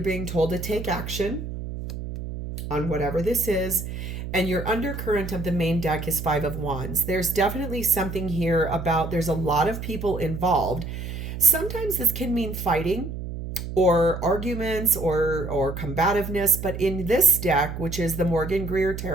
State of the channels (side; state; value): right; noise; hum, 7 dB below the sound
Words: being told to take action on whatever this is. And your undercurrent of the main deck is Five of Wands. There's definitely something here about there's a lot of people involved. Sometimes this can mean fighting or arguments or combativeness. But in this deck, which is the Morgan-Greer